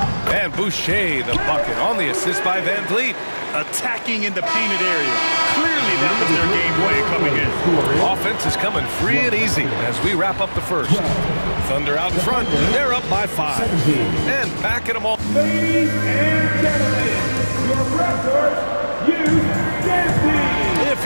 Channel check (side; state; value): both; inverted; correlation -1.00